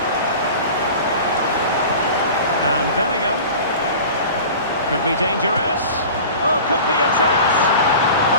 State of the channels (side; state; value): both; inverted; correlation -0.38